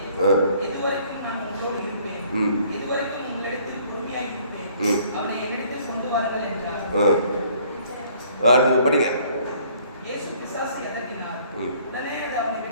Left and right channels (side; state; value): both; inverted; correlation -0.59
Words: இதுவரைக்கும் நான் உங்களோடு இருப்பேன், இதுவரைக்கும் உங்களிடத்தில் பொறுமையாக இருப்பேன், அவனை என்னிடத்தில் கொண்டு வாருங்கள் என்றார். படிங்க. இயேசு பிசாசை அதட்டினார். உடனே அது அவனை